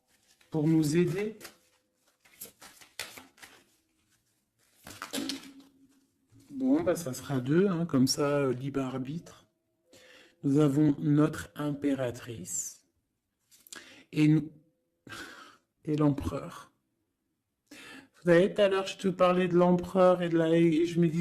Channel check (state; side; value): identical; both; correlation 1.00